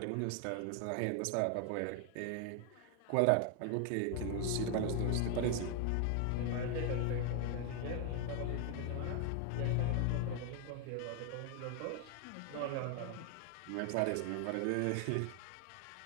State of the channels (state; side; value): different; both; correlation 0.00